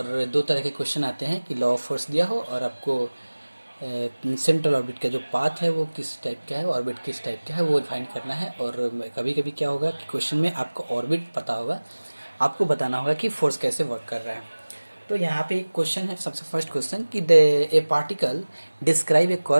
दो तरह के क्वेश्चन आते हैं कि लॉ ऑफ फोर्स दिया हो और आपको सेंट्रल ऑर्बिट का जो पाथ है वो किस टाइप का है, ऑर्बिट किस टाइप का है वो फाइंड करना है। और कभी कभी क्या होगा कि क्वेश्चन में आपको ऑर्बिट पता होगा, आपको बताना होगा कि फोर्स कैसे वर्क कर रहा है। तो यहाँ पे एक क्वेश्चन है, सबसे फर्स्ट क्वेश्चन कि a particle describe a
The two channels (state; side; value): inverted; both; correlation -1.00